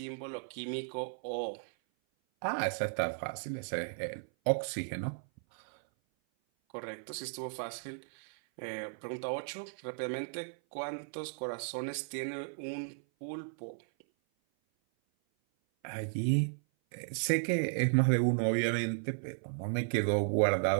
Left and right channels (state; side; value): silent; left; 55 dB below the other